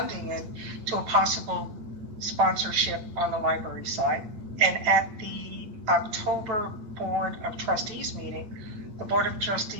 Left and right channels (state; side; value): late; left; 8.9 ms